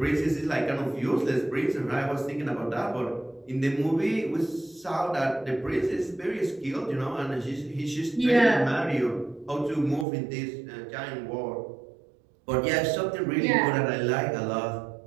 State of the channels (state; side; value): drops out; left; at 10.1 s